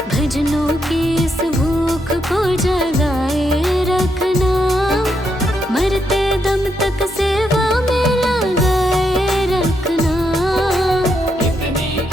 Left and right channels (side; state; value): both; normal; correlation 0.79